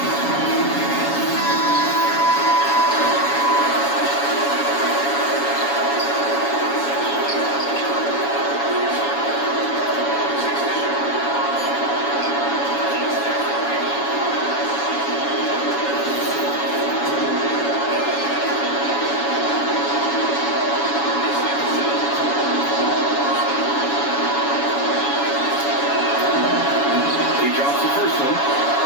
He drops the first one,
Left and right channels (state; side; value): late; right; 7.1 ms